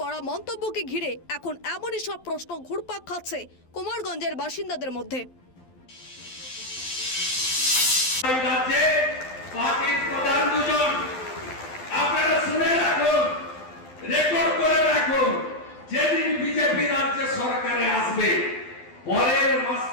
মন্তব্যকে ঘিরে এখন এমনই সব প্রশ্ন ঘুরপাক খাচ্ছে কুমারগঞ্জের বাসিন্দাদের মধ্যে। রাজ্যে পার্টির প্রধান দুজন, আপনারা শুনে রাখুন, রেকর্ড করে রাখুন, যেদিন বিজেপি রাজ্য সরকারে আসবে পরের মাস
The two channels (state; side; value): late; right; 12 ms